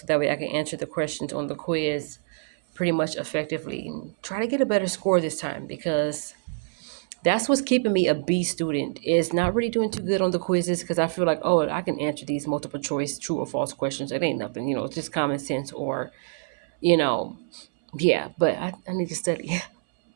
that way I can answer the questions on the quiz pretty much effectively and try to get a better score this time because that's what's keeping me a B student is not really doing too good on the quizzes because I feel like, oh, I can answer these multiple choice true or false questions. It ain't nothing, it's just common sense or, you know, yeah, but I need to study.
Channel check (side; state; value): left; silent; 61 dB below the other